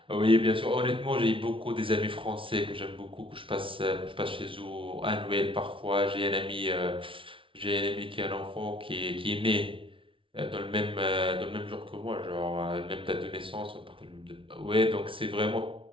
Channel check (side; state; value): left; late; 0.25 ms